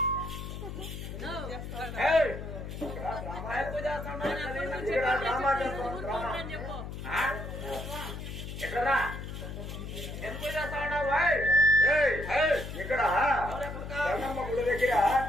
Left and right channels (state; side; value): noise; left; hum, 8 dB below the sound